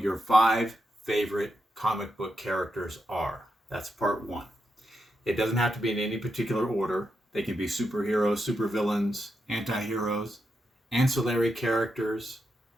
your 5 favorite comic book characters are. That's part 1. It doesn't have to be in any particular order. They can be superheroes, supervillains, anti-heroes, ancillary characters,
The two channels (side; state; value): both; normal; correlation 0.85